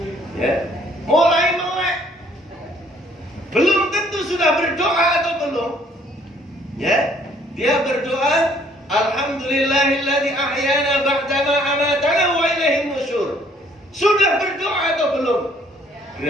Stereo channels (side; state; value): both; normal; correlation 0.62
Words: Ya, mulai melek. Belum tentu sudah berdoa atau belum. Ya, dia berdoa, Alhamdulillahilladzi ahyana ba'dama amatana wa ilaihin nusyur. Sudah berdoa atau belum?